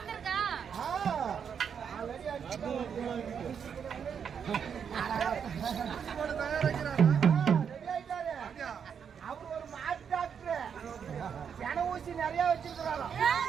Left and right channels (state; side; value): quieter; left; 7.3 dB